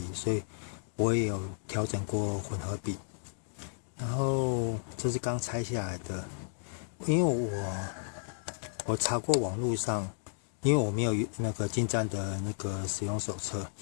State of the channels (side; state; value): right; silent; digital silence